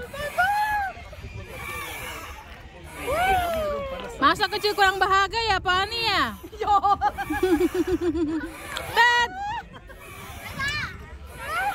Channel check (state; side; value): identical; both; correlation 1.00